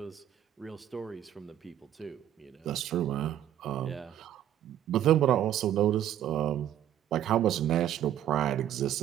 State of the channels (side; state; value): left; quieter; 11.2 dB